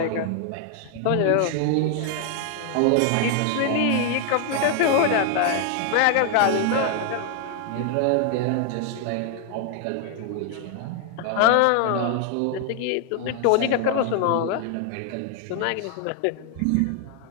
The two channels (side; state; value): both; different; correlation 0.00